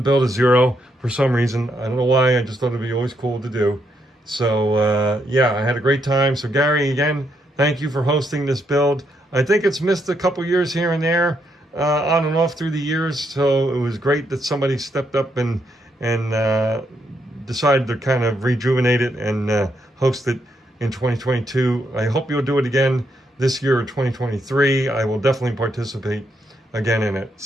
build a Zero for some reason. I don't know why. I just thought it'd be always cool to do. So yeah, I had a great time. So Gary, again, thank you for hosting this build. I think it's missed a couple years here and there, on and off through the years. So it was great that somebody stepped up and decided to kind of rejuvenate it and host it in 2022. I hope you'll do it again this year or 2023. I will definitely participate again in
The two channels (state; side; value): normal; both; correlation 0.77